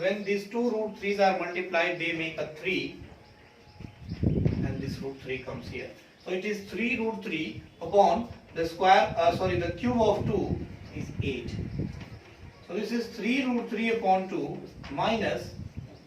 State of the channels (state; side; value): identical; both; correlation 1.00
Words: these two root 3's are multiplied, they make a 3, and this root 3 comes here. So it is 3 root 3 upon the square, the cube of 2 is 8. So this is 3 root 3 upon 2 minus